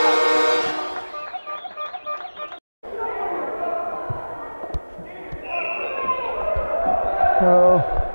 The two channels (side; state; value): both; inverted; correlation -1.00